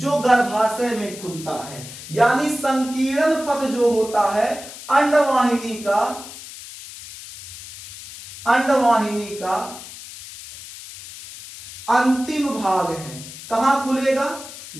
गर्भाशय में खुलता है। यानी संकीर्ण पथ जो होता है अंडवाहिनी का अंतिम भाग है। कहां खुलेगा,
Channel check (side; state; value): left; noise; hiss, 14 dB below the sound